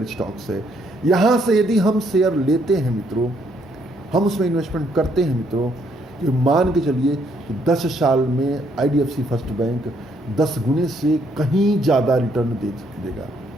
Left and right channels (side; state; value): both; normal; correlation 0.70